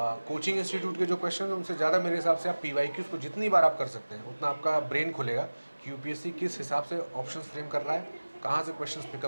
इंस्टीट्यूट के जो क्वेश्चन हैं उनसे ज़्यादा मेरे हिसाब से आप पीवाईक्यूज को जितनी बार आप कर सकते हैं उतना आपका ब्रेन खुलेगा कि यूपीएससी किस हिसाब से ऑप्शंस फ्रेम कर रहा है, कहाँ से क्वेश्चंस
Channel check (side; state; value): both; inverted; correlation -1.00